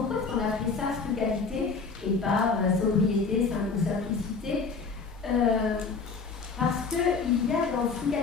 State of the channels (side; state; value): right; quieter; 4.7 dB